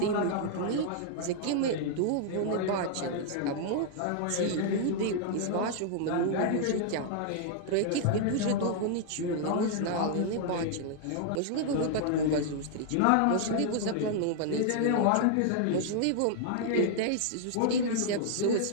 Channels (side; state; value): both; different; correlation 0.00